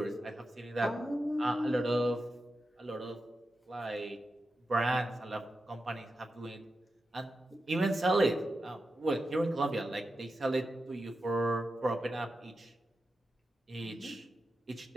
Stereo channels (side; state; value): both; normal; correlation 0.90